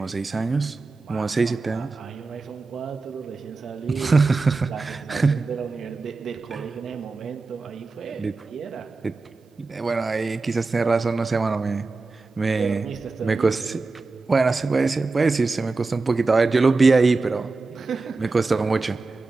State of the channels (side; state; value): left; quieter; 3.8 dB